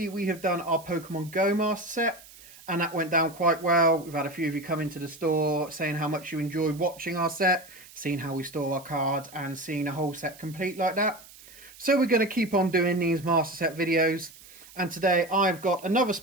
we have done our Pokemon Go Master Set and that went down quite well. We've had a few of you come into the store saying how much you enjoyed watching our set, seeing how we store our cards and seeing the whole set complete like that. So we're going to keep on doing these Master Set videos, and today I've got another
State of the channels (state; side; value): noise; right; hiss, 21 dB below the sound